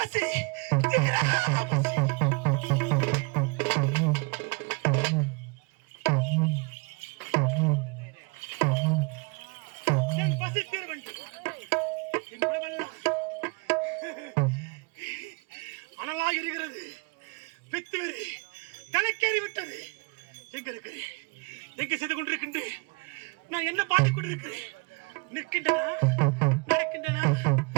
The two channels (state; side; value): quieter; left; 29.4 dB